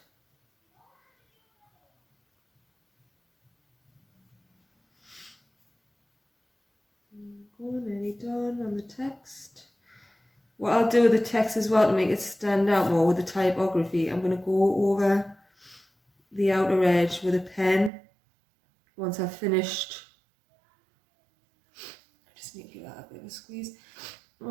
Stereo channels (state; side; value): drops out; left; at 17.9 s